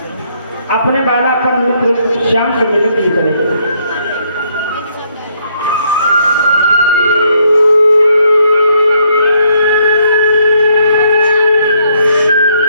अपने बालापन मित्र श्याम से मिलने के लिए चले।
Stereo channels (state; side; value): inverted; both; correlation -0.70